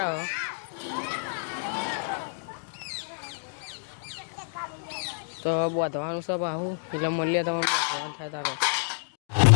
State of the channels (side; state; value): right; silent; digital silence